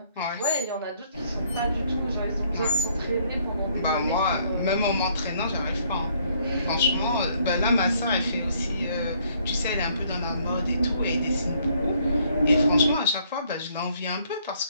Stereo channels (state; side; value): inverted; both; correlation -0.65